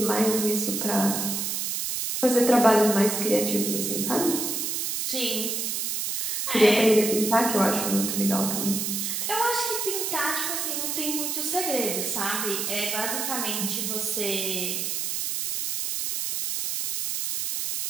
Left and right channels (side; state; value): right; noise; hiss, 1 dB below the sound